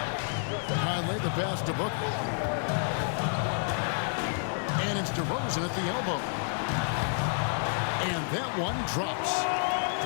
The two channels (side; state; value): right; silent; 58 dB below the other